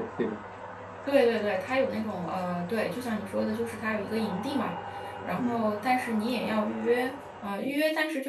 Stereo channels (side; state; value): both; identical; correlation 1.00